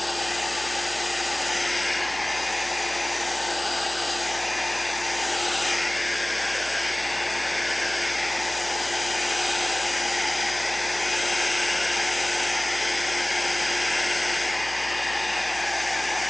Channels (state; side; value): noise; right; hum, 18 dB below the sound